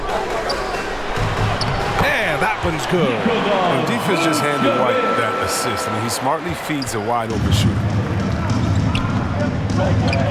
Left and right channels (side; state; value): both; identical; correlation 1.00